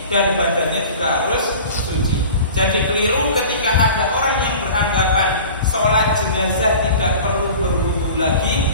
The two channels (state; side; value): inverted; both; correlation -0.40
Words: dan badannya juga harus suci. Jadi keliru ketika ada orang yang beranggapan sholat jenazah tidak perlu berwudu